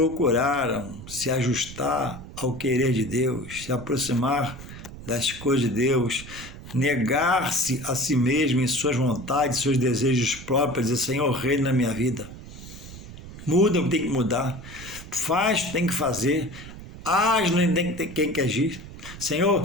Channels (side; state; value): right; noise; rumble, 14 dB below the sound